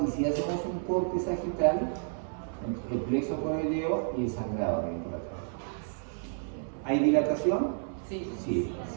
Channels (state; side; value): silent; left; 57 dB below the other